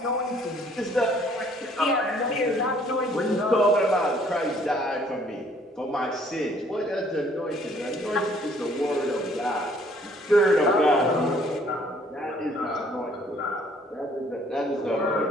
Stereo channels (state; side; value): normal; both; correlation 0.60